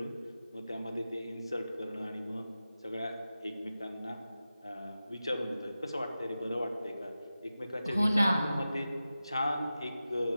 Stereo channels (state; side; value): inverted; both; correlation -0.93